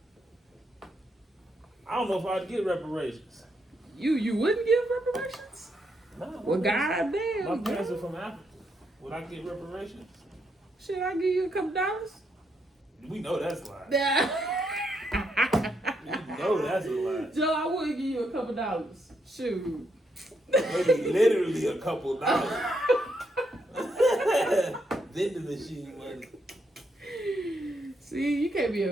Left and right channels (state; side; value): normal; both; correlation 0.78